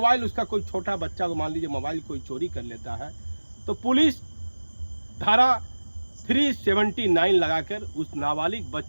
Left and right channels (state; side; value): inverted; both; correlation -1.00